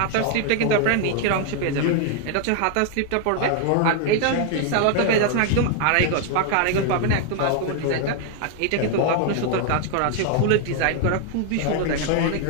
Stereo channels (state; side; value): different; both; correlation 0.00